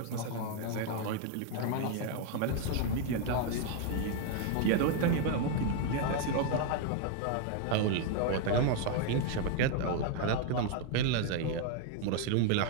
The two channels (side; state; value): both; different; correlation 0.00